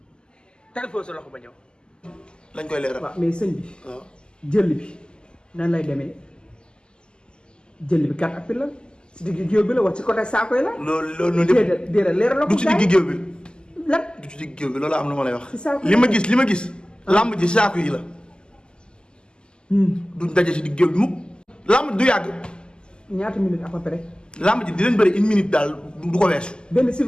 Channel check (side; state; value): right; late; 0.048 ms